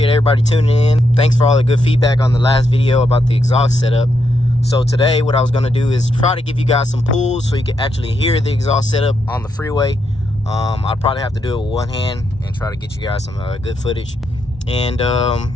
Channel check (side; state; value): both; normal; correlation 0.80